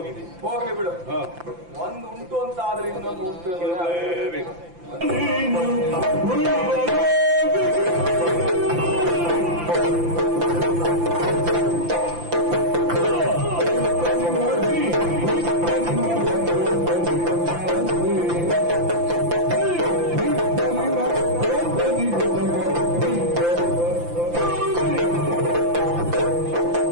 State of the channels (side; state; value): left; late; 5.8 ms